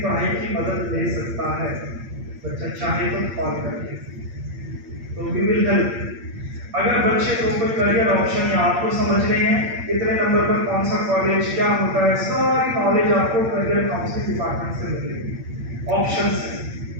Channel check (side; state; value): left; late; 8.7 ms